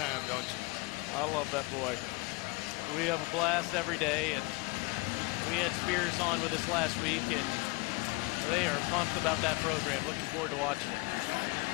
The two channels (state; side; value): quieter; right; 26.0 dB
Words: don't you? I love that boy. We have a blast every day, and we had Spears on with us last week, and they are pumped about that program. Looking forward to watching it.